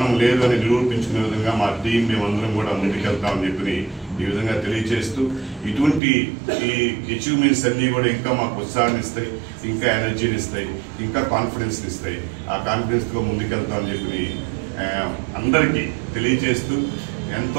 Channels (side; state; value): left; drops out; at 6.0 s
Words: లేదు అని నిరూపించుకునే విధంగా మా టీం మేమందరం కూడా ముందుకెళ్తామని చెప్పి ఈ విధంగా తెలియజేస్తూ, ఇటువంటి ఈ అచీవ్మెంట్స్ అన్నీ కూడా ఇంకా మాకు ఉత్సాహాన్ని ఇస్తాయి, ఇంకా ఎనర్జీని ఇస్తాయి, ఇంకా కాన్ఫిడెన్స్ని ఇస్తాయి. ఆ కాన్ఫిడెన్స్తో ముందుకెళ్తామని చెప్పి అందరికీ తెలియజేస్తూ,